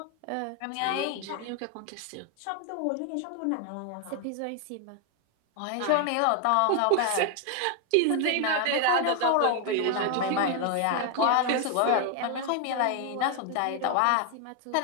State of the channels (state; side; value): different; both; correlation 0.01